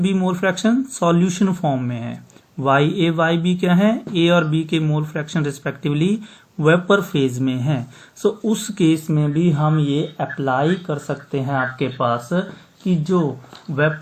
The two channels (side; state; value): both; identical; correlation 1.00